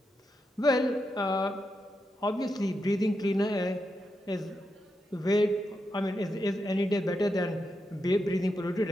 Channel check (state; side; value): normal; both; correlation 0.86